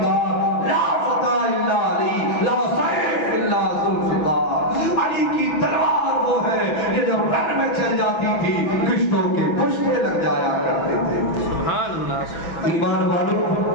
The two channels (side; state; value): right; late; 6.0 ms